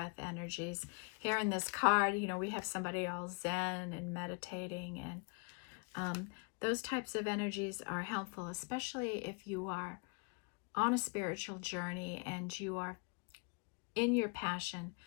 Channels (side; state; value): right; quieter; 33.3 dB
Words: energies. Here in this card, you know, we have somebody all zen and meditating, and those types of energies are helpful, especially if you are on a spiritual journey and you are in your passion,